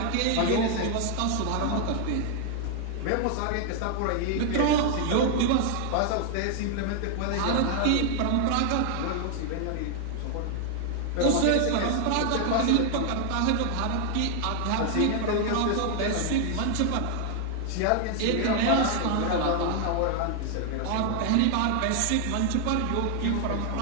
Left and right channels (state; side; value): different; both; correlation 0.00